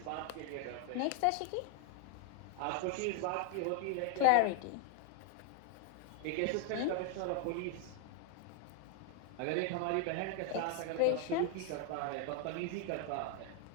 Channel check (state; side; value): different; both; correlation 0.00